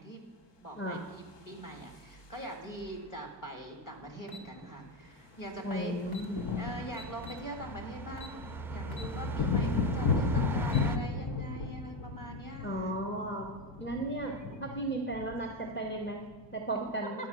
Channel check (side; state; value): both; normal; correlation 0.13